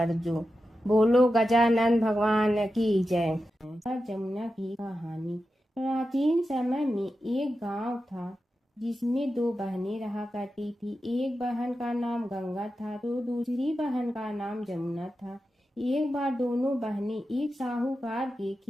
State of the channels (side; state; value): both; normal; correlation 0.91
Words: जो। बोलो गजानन भगवान की जय। जमुना की कहानी। प्राचीन समय में एक गांव था जिसमें दो बहनें रहा करती थी। एक बहन का नाम गंगा था तो दूसरी बहन का नाम जमुना था। एक बार दोनों बहनें एक साहूकार के